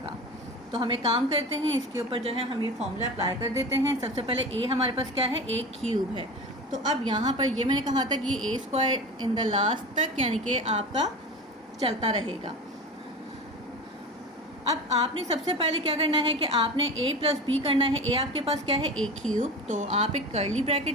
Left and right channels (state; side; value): normal; both; correlation 0.30